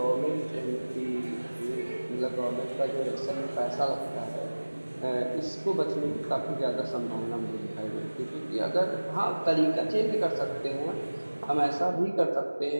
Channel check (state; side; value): inverted; both; correlation -1.00